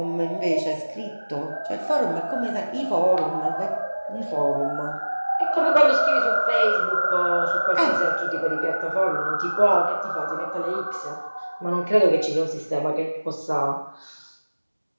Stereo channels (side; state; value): both; inverted; correlation -1.00